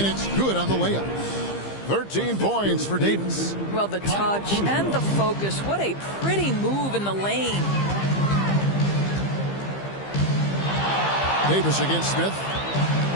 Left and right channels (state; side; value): late; right; 15 ms